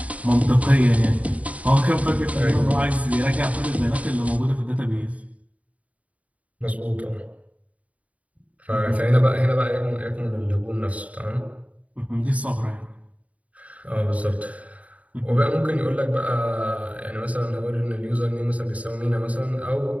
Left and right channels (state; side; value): late; left; 0.068 ms